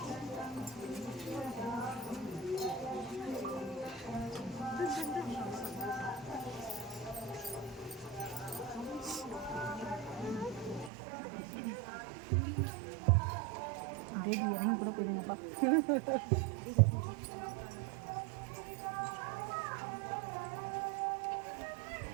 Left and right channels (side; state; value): left; drops out; at 10.9 s